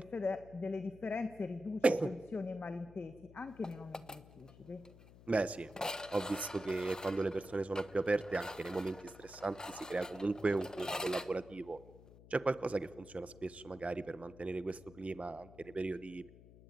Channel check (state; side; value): noise; left; hum, 20 dB below the sound